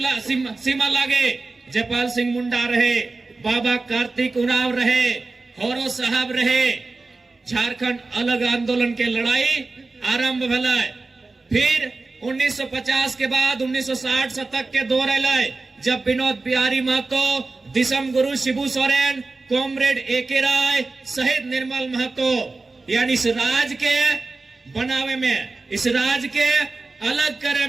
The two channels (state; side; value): quieter; left; 3.6 dB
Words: लगे, जयपाल सिंह मुंडा रहे, बाबा कार्तिक उरांव रहे, हौरो साहब रहे, झारखंड अलग आंदोलन के लड़ाई आरंभ भला। फिर 1950 के बाद 1960 शतक के दौर आए, जब विनोद बिहारी महतो, दिसम गुरु शिबू सोरेन, कॉमरेड एके राय, शहीद निर्मल महतो, यानी इस राज के बनावे में, इस राज के अलग करे